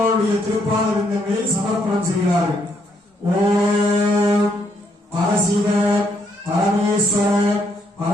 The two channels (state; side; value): normal; both; correlation 0.73